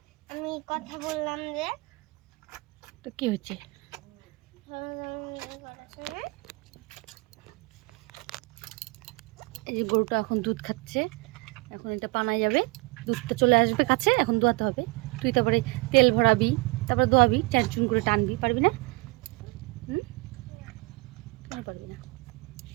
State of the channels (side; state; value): left; quieter; 26.2 dB